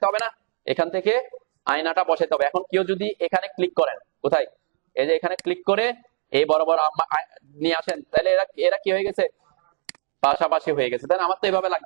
হবে না? এখান থেকে আয়নাটা বসাইতে হবে। এখন কেউ যদি এখানে ক্লিক করেন, কোথায়, এই যে এখানে ক্লিক করে এই বরাবর নিয়ে আসেন, তাহলে এরা কি হয়ে গেছে, পাশাপাশি হয়ে গেছে। তাই না? আমার তো এভাবে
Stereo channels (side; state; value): left; silent; 58 dB below the other